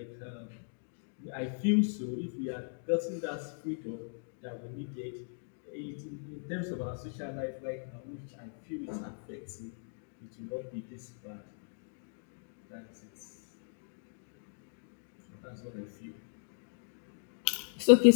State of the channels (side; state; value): right; silent; digital silence